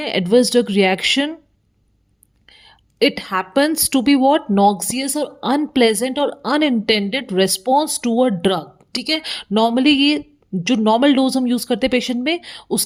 adverse drug reaction, it happens to be what? Noxious or unpleasant or unintended response to a drug. ठीक है, normally ये जो normal dose हम use करते हैं पेशेंट में,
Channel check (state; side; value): identical; both; correlation 1.00